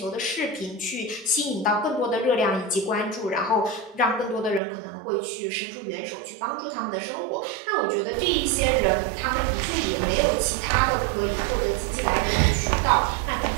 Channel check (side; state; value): left; drops out; at 4.6 s